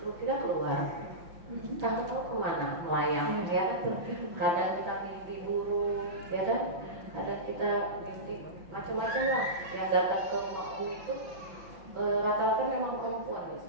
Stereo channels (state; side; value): late; left; 5.7 ms